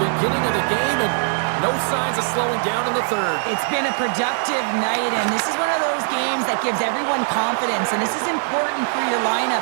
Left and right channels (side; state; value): left; silent; 65 dB below the other